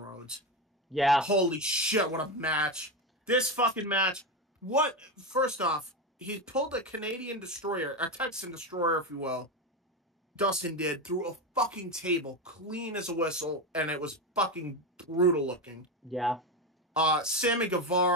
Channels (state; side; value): normal; both; correlation 0.16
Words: Yeah. Holy shit, what a match. This fucking match. First off, he pulled a Canadian destroyer, a Texan destroyer, if you will. Dustin did, through a fucking table, clean as a whistle, and it was fucking brutal looking. Yeah. Sammy